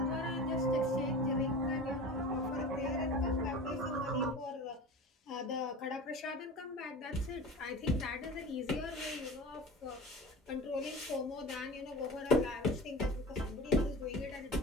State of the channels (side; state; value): both; normal; correlation 0.35